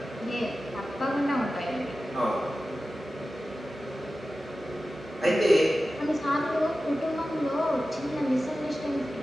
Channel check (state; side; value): normal; both; correlation 0.94